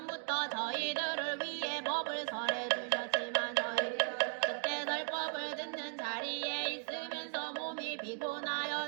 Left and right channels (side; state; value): left; silent; 53 dB below the other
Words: 저희들을 위해 법을 설해 주셨지만 저희 그때 설법을 듣는 자리에 있으면서 몸이